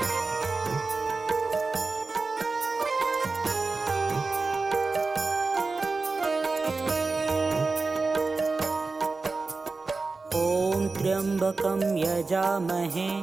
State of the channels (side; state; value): left; quieter; 3.9 dB